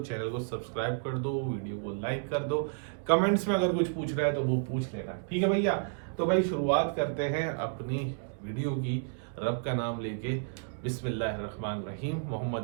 को सब्सक्राइब कर दो, वीडियो को लाइक कर दो, कमेंट्स में अगर कुछ पूछ रहा है तो वो पूछ लेना। ठीक है भैया, तो भाई शुरुआत करते हैं अपनी वीडियो की रब का नाम लेके। बिस्मिल्लाहिर्रहमानिर्रहीम, मोहम्मद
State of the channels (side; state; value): left; silent; digital silence